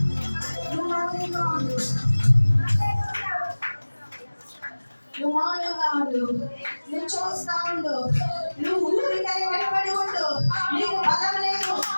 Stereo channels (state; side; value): inverted; both; correlation -1.00